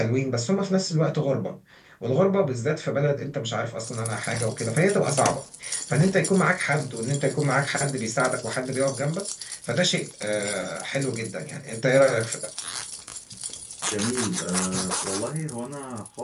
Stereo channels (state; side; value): identical; both; correlation 1.00